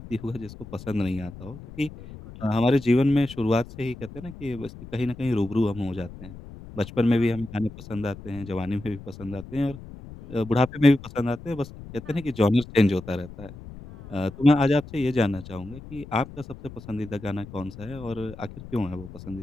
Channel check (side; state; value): left; noise; rumble, 15 dB below the sound